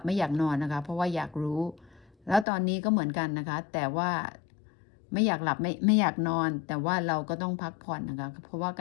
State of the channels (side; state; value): right; drops out; at 2.5 s